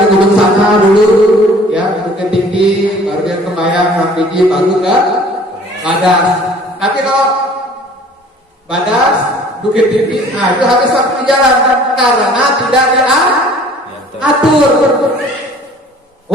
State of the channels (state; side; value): normal; both; correlation 0.51